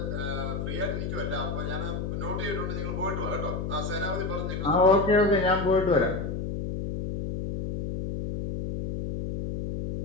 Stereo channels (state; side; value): noise; left; hum, 3 dB below the sound